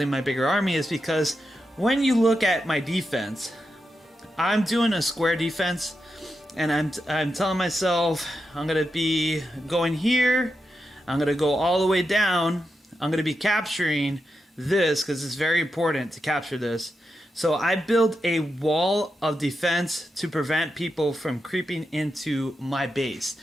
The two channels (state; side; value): normal; both; correlation 0.87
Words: my bigger army is because when you look at my defense, I'm doing a square defense, and I'm telling myself I'm going to be going here. I'm going to go all the way down. I'm going to be capturing this because it's very important to capture this. So I build a wall of defense to prevent people from creeping into my base.